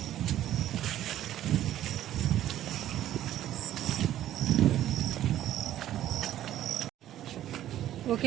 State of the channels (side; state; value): left; quieter; 12.5 dB